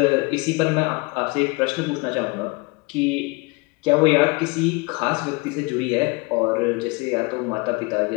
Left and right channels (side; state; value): right; quieter; 26.7 dB